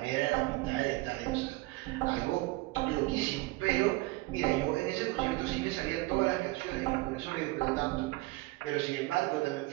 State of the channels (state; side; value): quieter; left; 21.5 dB